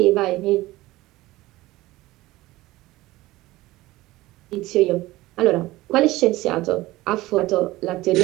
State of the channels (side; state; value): left; quieter; 18.3 dB